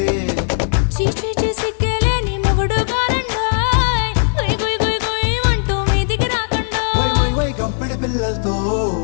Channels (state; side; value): silent; right; 68 dB below the other